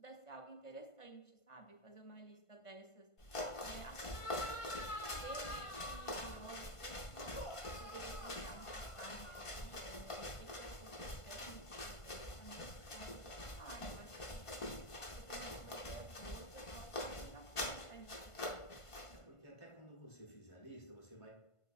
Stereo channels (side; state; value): right; late; 1.5 ms